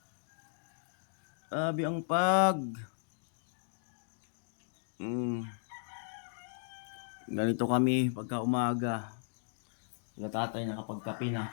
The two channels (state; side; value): silent; right; digital silence